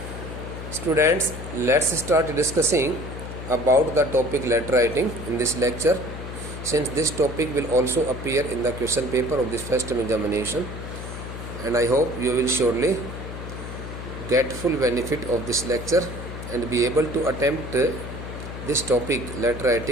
Students, let's start discussing about the topic letter writing in this lecture, since this topic will also appear in the question paper of this first term examination, and I hope you will surely get full benefit of this lecture and be able to attempt this topic letter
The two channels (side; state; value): left; noise; hum, 9 dB below the sound